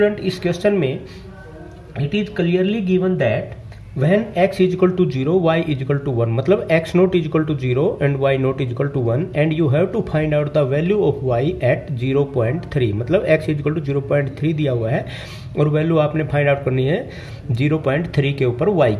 इस क्वेश्चन में it is clearly given that when x is equal to 0 y is equal to 1 मतलब x naught is equal to 0 and y naught is equal to 1 and you have to find out the value of y at 0.3 मतलब x is equal to 0.3 दिया हुआ है और वैल्यू आपने फाइंड आउट करनी है 0.3 के ऊपर y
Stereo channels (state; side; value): identical; both; correlation 1.00